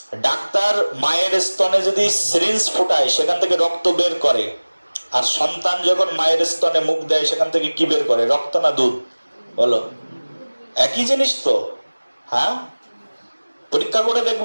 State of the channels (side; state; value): both; inverted; correlation -1.00